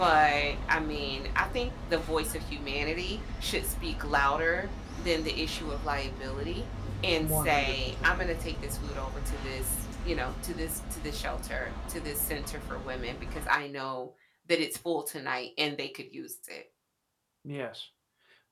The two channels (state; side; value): identical; both; correlation 1.00